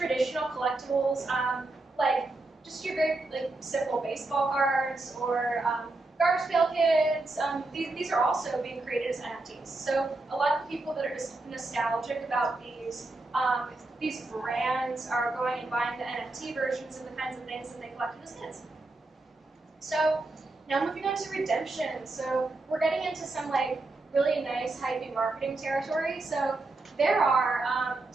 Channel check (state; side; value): quieter; left; 3.1 dB